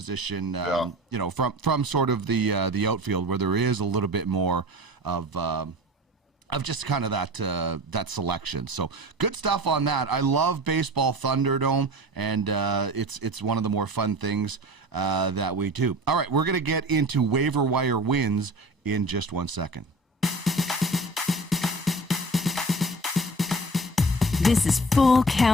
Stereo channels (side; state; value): both; normal; correlation 0.38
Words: from sort of the outfield where there is a little bit more of just kind of that selection. So good stuff on that. I love Baseball Thunderdome, and it's one of the more fun things that we do. All right, we're going to get into waiver wire wins in just 1 second. This is Full